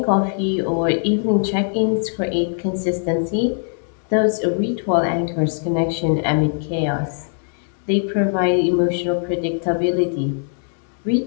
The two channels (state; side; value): silent; right; 65 dB below the other